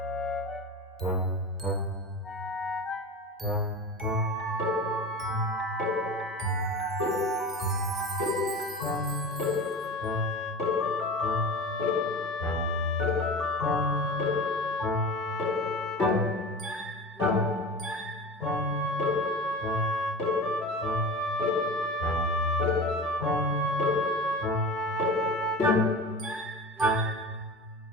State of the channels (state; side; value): normal; both; correlation 0.32